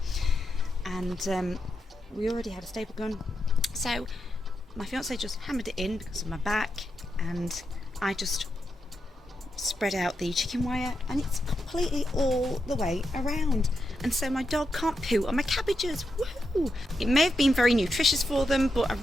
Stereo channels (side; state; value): both; normal; correlation 0.85